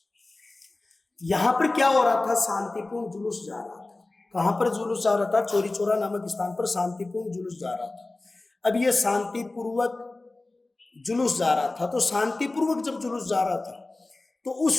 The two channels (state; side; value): quieter; right; 3.1 dB